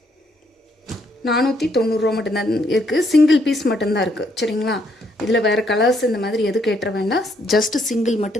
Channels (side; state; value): both; normal; correlation 0.72